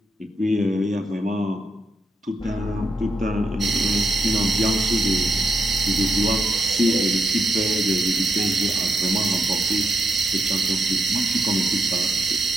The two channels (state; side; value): normal; both; correlation 0.81